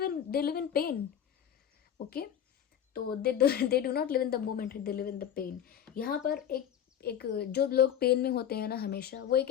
in pain. Okay, तो they do not live in the moment, they live in the pain. यहाँ पर एक जो लोग पेन में होते हैं ना, हमेशा वो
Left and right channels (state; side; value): quieter; right; 9.5 dB